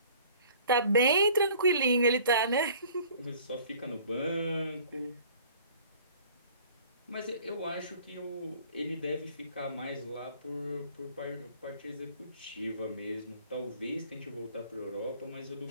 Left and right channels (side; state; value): both; inverted; correlation -0.51